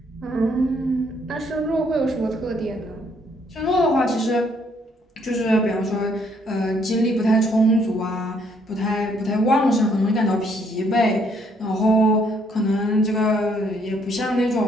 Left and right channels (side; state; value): both; normal; correlation 0.68